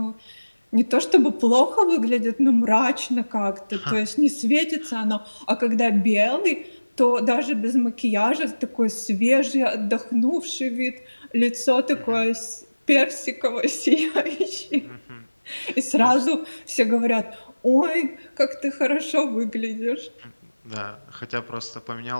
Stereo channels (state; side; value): inverted; both; correlation -1.00